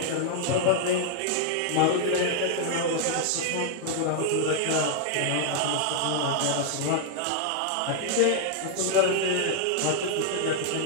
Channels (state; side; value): different; both; correlation 0.00